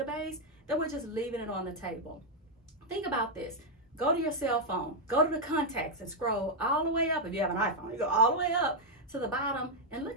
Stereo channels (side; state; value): both; normal; correlation 0.00